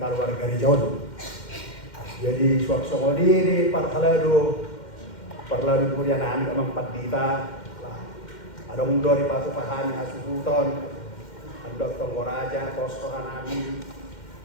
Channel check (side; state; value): right; late; 2.1 ms